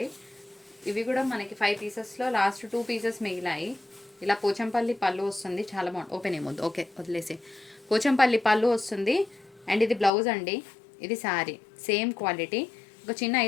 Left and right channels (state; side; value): drops out; right; at 10.1 s